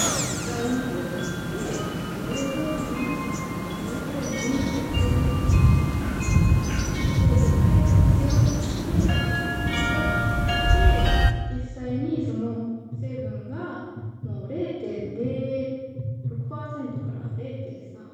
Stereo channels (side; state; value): both; identical; correlation 1.00